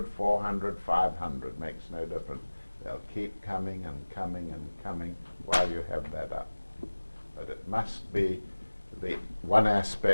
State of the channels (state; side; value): inverted; both; correlation -1.00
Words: 400, 500, makes no difference. They'll keep coming and coming and coming while you have that up. But it must be the one